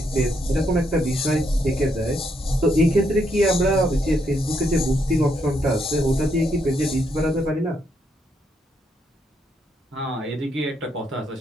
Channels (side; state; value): both; normal; correlation 0.76